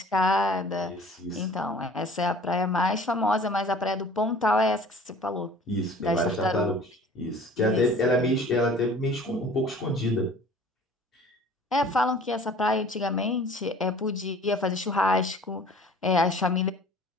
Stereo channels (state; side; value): normal; both; correlation 0.48